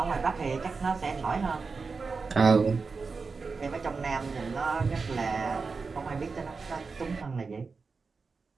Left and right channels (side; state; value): left; quieter; 4.6 dB